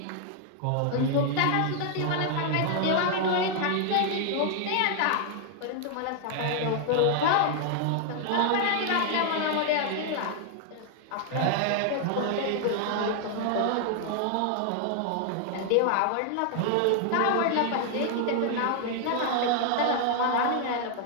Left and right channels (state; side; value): different; both; correlation 0.00